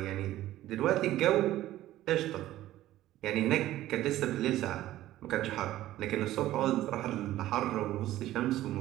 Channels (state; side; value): quieter; left; 14.6 dB